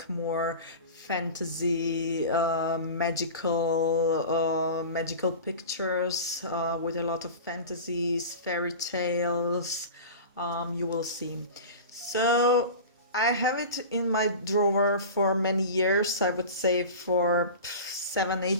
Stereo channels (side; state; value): both; inverted; correlation -0.33